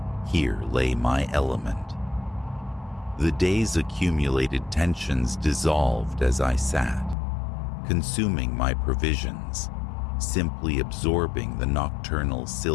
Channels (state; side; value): drops out; right; at 7.2 s